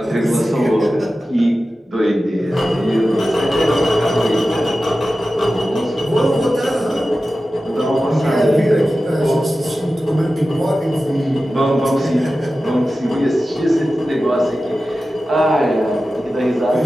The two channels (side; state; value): both; normal; correlation 0.94